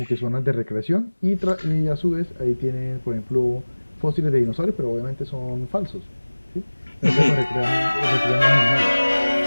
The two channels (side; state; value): both; inverted; correlation -1.00